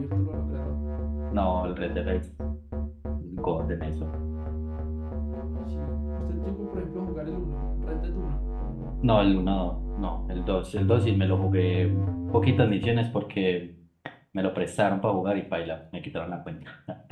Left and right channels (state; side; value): identical; both; correlation 1.00